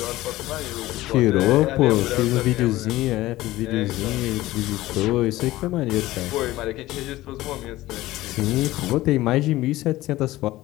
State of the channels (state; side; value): quieter; right; 16.9 dB